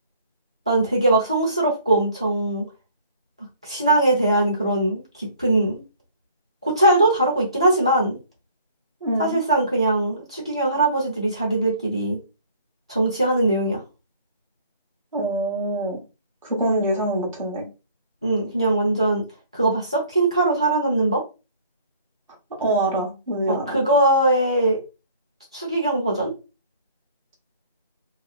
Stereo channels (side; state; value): both; inverted; correlation -0.54